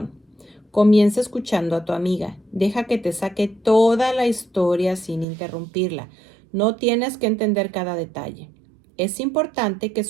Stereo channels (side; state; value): left; drops out; at 5.2 s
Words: Comienza escuchando a tu amiga. Deja que te saque toda la historia sin interrumpirla. No tienes que entender cada detalle. Es importante que